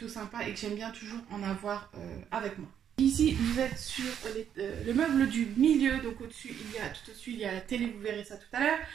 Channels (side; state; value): left; quieter; 9.1 dB